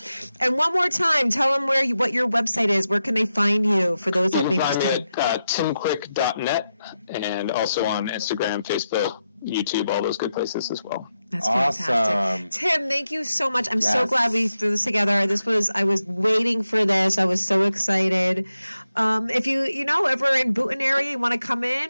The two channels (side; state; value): both; inverted; correlation -0.88